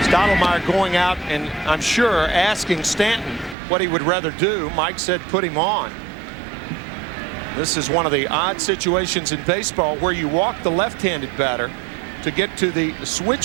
Stottlemyre going out and I'm sure asking Stanton what he would rather do. Mike said put him on. This is one of the odd situations in baseball where you walk the left-handed batter to get to the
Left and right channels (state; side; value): drops out; left; at 3.6 s